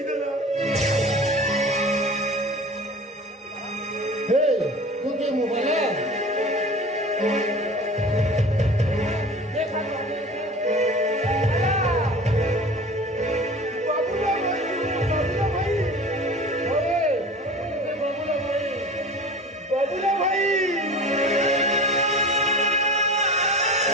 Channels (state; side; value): normal; both; correlation 0.38